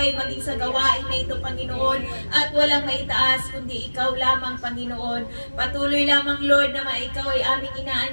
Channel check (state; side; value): inverted; both; correlation -1.00